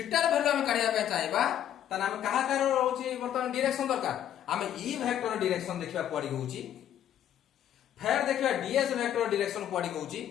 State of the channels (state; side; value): quieter; right; 10.6 dB